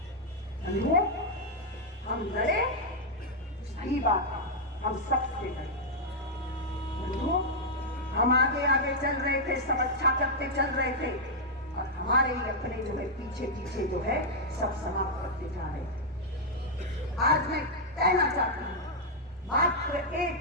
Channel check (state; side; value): normal; both; correlation -0.04